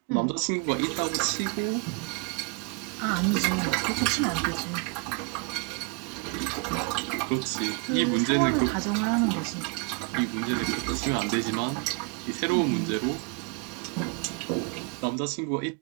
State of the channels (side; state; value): left; quieter; 31.4 dB